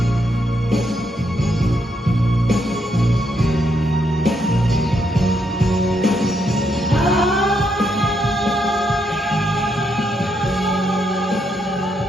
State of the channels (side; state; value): both; normal; correlation 0.78